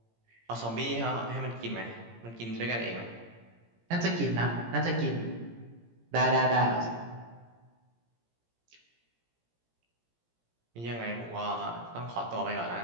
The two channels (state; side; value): late; left; 17 ms